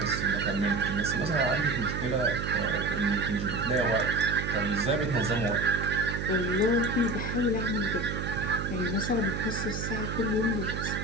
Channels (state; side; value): noise; right; hum, 4 dB below the sound